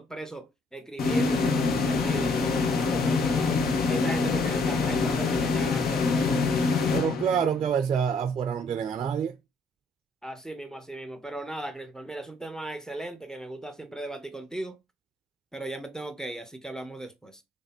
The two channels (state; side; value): normal; both; correlation 0.65